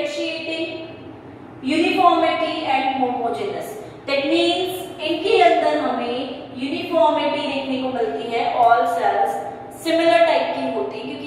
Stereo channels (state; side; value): identical; both; correlation 1.00